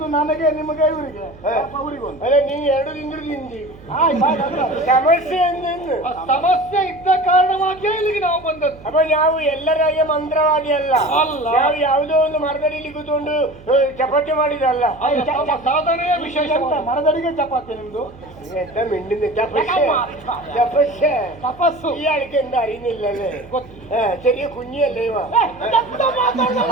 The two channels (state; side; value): noise; right; hum, 21 dB below the sound